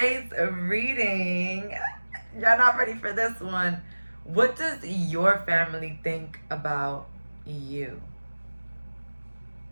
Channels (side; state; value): both; inverted; correlation -1.00